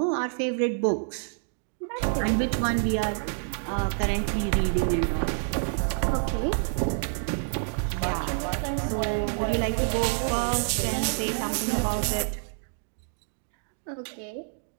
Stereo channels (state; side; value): silent; left; 60 dB below the other